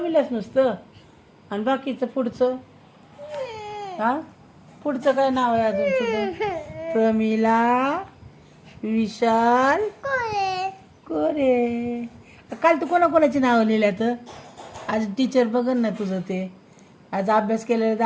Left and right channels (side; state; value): both; identical; correlation 1.00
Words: नुसतं आणि बाकीचं पुढचं हा पुढचं काय नाव आहे अजून तुझं प्रमिला विशाल कोरे काल तू कोणाकोणाची नावं लिहिल्यात आज टीचर बघन ना तुझं ते आज अभ्यास केलेला